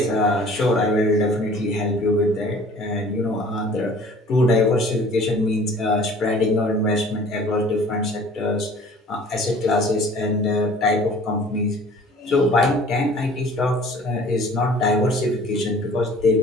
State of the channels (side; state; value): both; normal; correlation 0.49